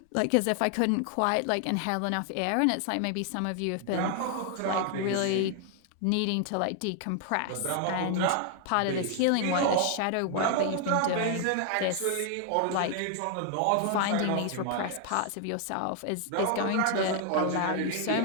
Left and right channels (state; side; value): different; both; correlation 0.00